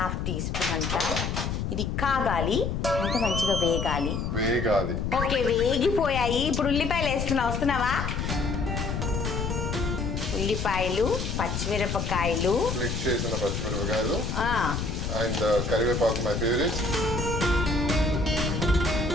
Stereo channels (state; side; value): noise; left; rumble, 2 dB below the sound